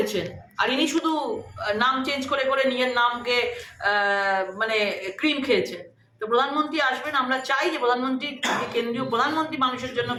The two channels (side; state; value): both; identical; correlation 1.00